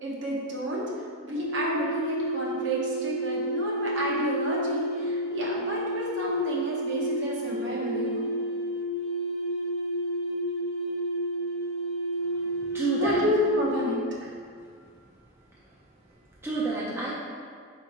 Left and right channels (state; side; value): normal; both; correlation -0.12